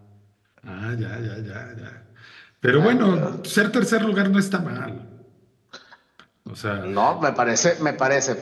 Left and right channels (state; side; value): identical; both; correlation 1.00